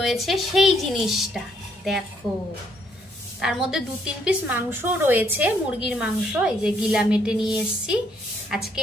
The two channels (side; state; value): both; normal; correlation 0.70